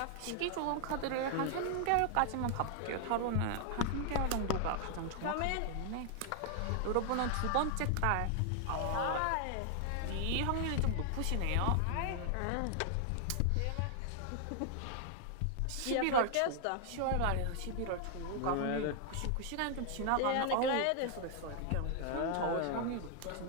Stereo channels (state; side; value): different; both; correlation 0.00